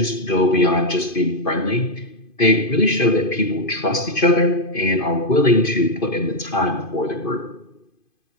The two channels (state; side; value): late; right; 2.5 ms